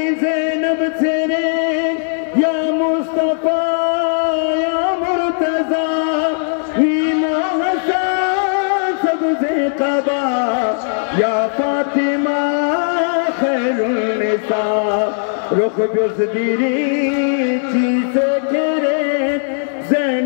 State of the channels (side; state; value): right; silent; digital silence